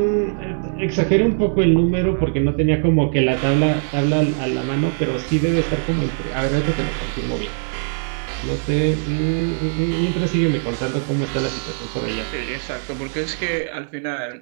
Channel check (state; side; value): silent; left; 65 dB below the other